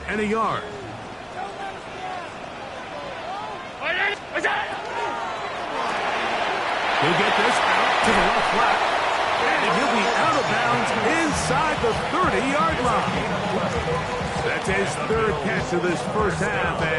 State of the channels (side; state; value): both; identical; correlation 1.00